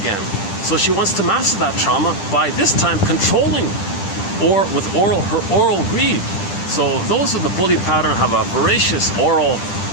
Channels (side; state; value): right; late; 10 ms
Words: So she wants to master that trauma by this time controlling, or with her oral greed. So those of the bully pattern have a voracious oral,